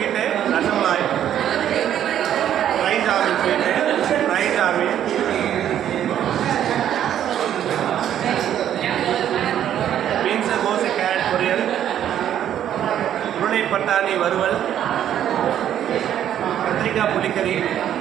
fry jamun, beans கோஸ் கேரட் பொரியல், உருளை பட்டாணி வறுவல், கத்திரிக்காய் புளிக்கறி,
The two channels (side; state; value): left; quieter; 10.5 dB